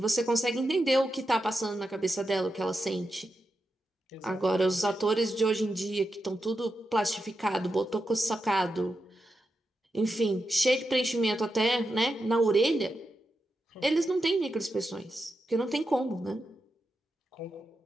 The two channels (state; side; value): normal; both; correlation 0.88